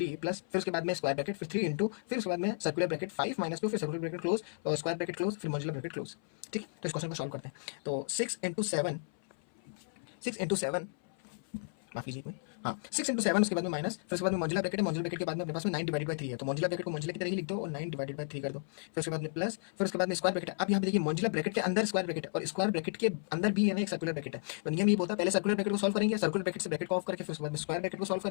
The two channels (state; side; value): silent; right; 55 dB below the other